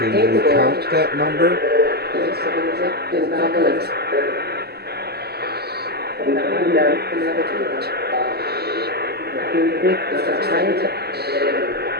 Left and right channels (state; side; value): late; left; 0.46 ms